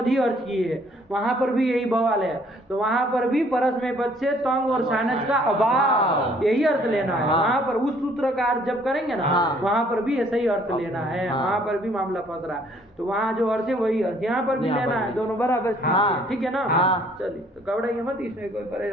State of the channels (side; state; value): both; normal; correlation 0.61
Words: ही अर्थ किए है, वहां पर भी यही बवाल है। तो वहां पर भी परस्मय पद से तंग और सानच का अभाव यही अर्थ लेना है। वहां पर उस सूत्र का अर्थ जब करेंगे ना वहां पर भी ऐसा ही अर्थ लेना है। वहां पर भी मामला फंस रहा है तो वहां जो अर्थ है वही अर्थ यहाँ पर भी लेना है, दोनों बराबर। ठीक है ना। चलिए तो घबराइए मत, इसमें कोई